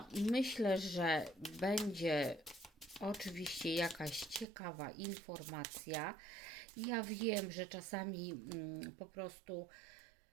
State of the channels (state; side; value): drops out; left; at 4.5 s